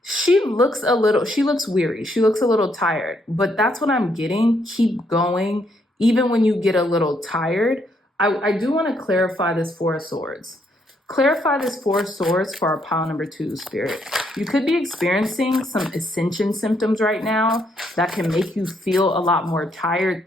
She looks weary. She looks a little tired, but that's what I'm getting. Keep going. Even when you get a little tired, I do want to clarify this Four of Swords. Clarify this Four of Swords for our pile number 2, Spirit. You could be experiencing some ascension symptoms right now that can make you feel a lot more tired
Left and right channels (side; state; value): both; normal; correlation 0.73